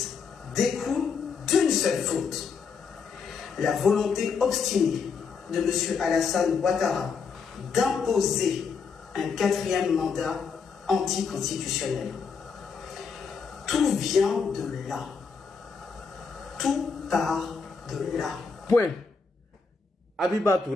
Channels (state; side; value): quieter; right; 5.4 dB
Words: découlent d'une seule faute. La volonté obstinée de M. Alassane Ouattara d'imposer un 4e mandat anticonstitutionnel. Tout vient de là. Tout part de là. Point. Abiba